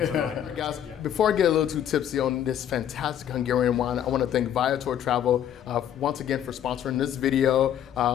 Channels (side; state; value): right; quieter; 10.1 dB